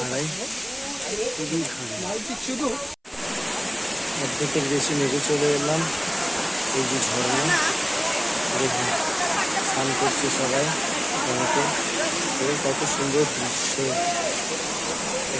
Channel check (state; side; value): identical; both; correlation 1.00